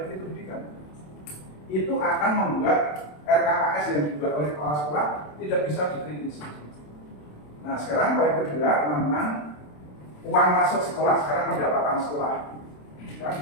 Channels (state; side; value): late; right; 27 ms